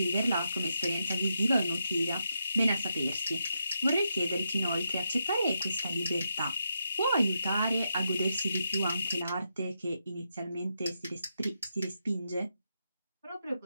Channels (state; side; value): inverted; both; correlation -0.83